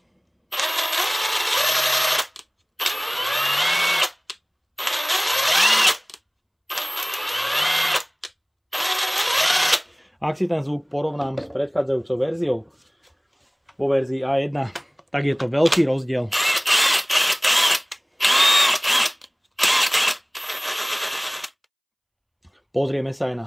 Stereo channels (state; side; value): identical; both; correlation 1.00